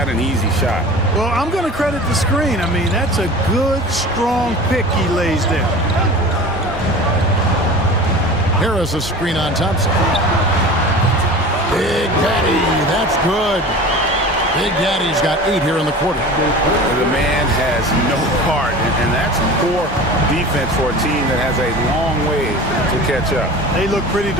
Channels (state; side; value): normal; both; correlation 0.37